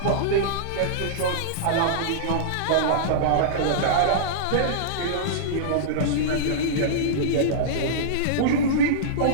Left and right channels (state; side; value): different; both; correlation -0.03